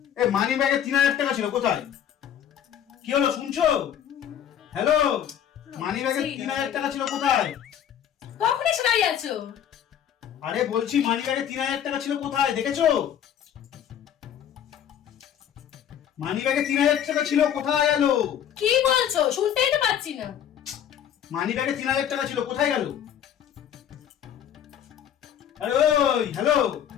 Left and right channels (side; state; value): right; quieter; 9.7 dB